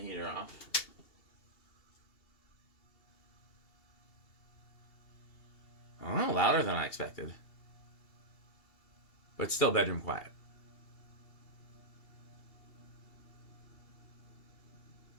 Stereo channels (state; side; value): late; right; 2.8 ms